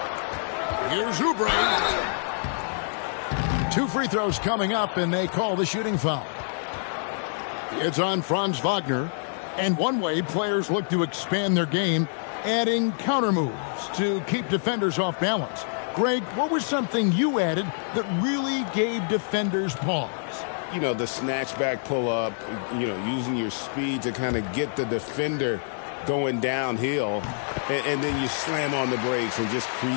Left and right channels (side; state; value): right; silent; digital silence